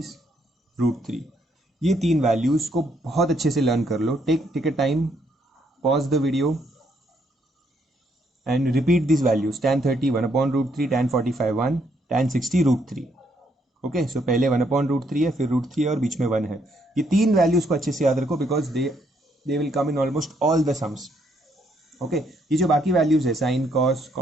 √3. ये 3 वैल्यूज को बहुत अच्छे से लर्न कर लो. Take a time, pause the video and repeat this values. tan 30 1/√3, tan 45 1, tan 60 √3. Okay, so पहले 1/√3 है, फिर √3 है और बीच में 1 है. ये 3 वैल्यूज को अच्छे से याद रखो because they will come in almost all the sums. Okay, ये जो बाकी वैल्यूज है sine, cos,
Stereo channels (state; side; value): normal; both; correlation 0.72